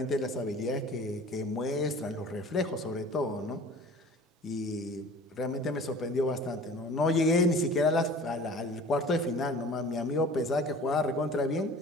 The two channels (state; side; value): normal; both; correlation 0.44